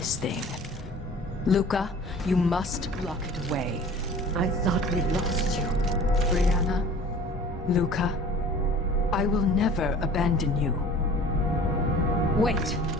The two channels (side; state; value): both; normal; correlation 0.45